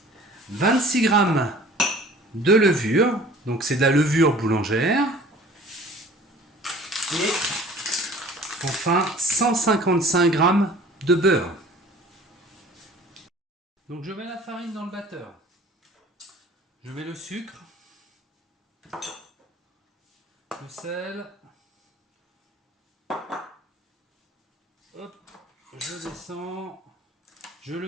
26 grammes de levure, donc c'est de la levure boulangère, et enfin 155 grammes de beurre. Donc je mets la farine dans le batteur, je mets le sucre, le sel, hop, je descends, je le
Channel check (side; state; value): both; normal; correlation 0.48